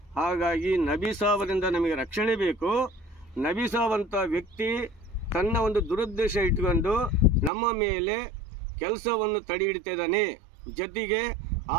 ಹಾಗಾಗಿ ನಬಿ ಸಾಬರಿಂದ ನಮಗೆ ರಕ್ಷಣೆ ಬೇಕು. ನಬಿ ಸಾಬ್ ಅಂತ ವ್ಯಕ್ತಿ ತನ್ನ ಒಂದು ದುರುದ್ದೇಶ ಇಟ್ಕೊಂಡು ನಮ್ಮ ಮೇಲೆ ಕೆಲಸವನ್ನು ತಡೆ ಹಿಡಿತಾ ಇದ್ದಾನೆ. ಜೊತೆಗೆ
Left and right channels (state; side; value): drops out; left; at 7.5 s